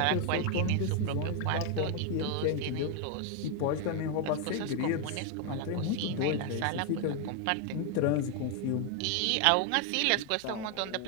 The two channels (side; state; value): both; different; correlation 0.01